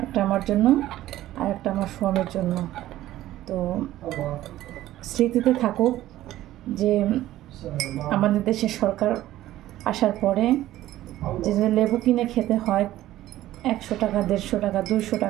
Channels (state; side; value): quieter; left; 14.5 dB